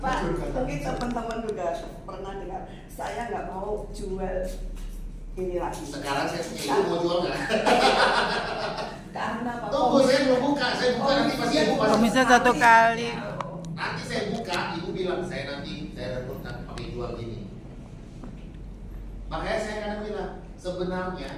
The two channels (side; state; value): both; identical; correlation 1.00